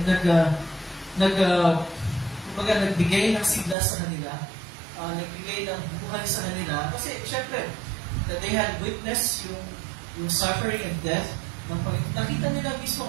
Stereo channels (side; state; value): left; drops out; at 3.8 s